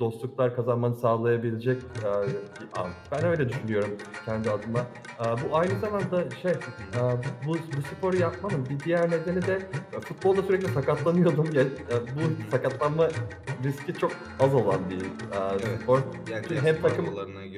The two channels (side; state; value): both; identical; correlation 1.00